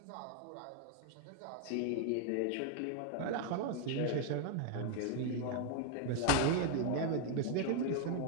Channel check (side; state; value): both; different; correlation 0.00